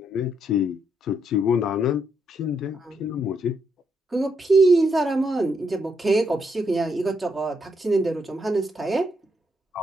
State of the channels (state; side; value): normal; both; correlation 0.77